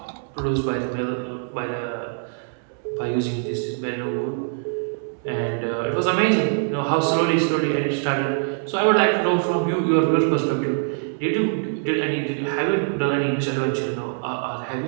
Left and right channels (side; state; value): left; silent; digital silence